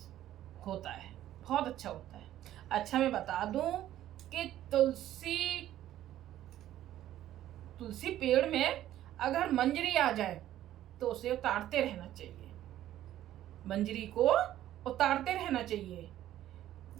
होता है, बहुत अच्छा होता है। अच्छा, मैं बता दूं कि तुलसी पेड़ में अगर मंजरी आ जाए तो उसे उतारते रहना चाहिए। मंजरी को उतारते रहना चाहिए।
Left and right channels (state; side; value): quieter; left; 12.9 dB